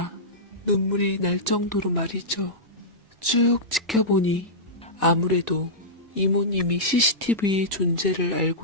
눈물이 날 정도로 말이죠. 쭉 지켜보니 아무래도 이모님이 CCTV의 존재를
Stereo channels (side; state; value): both; normal; correlation -0.14